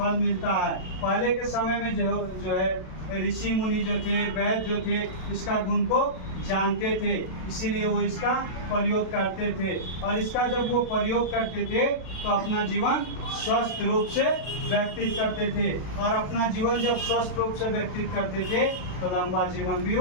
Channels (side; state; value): right; late; 32 ms